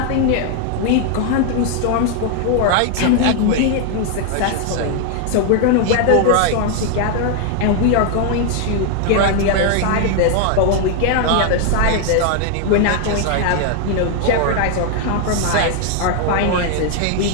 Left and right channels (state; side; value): different; both; correlation 0.00